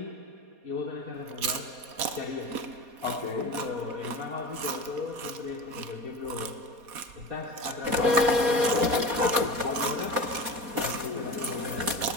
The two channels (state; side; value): late; left; 4.2 ms